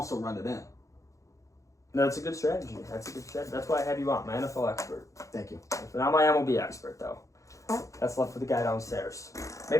run it in. No, that's a good strategy. That's why I have you on, my NFL expert. Thank you. Not my MLB expert, though. That's left for the guy downstairs.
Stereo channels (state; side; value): late; right; 0.15 ms